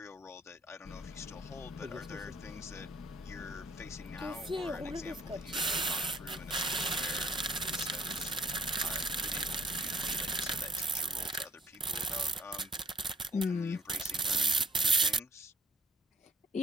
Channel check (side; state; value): both; normal; correlation 0.58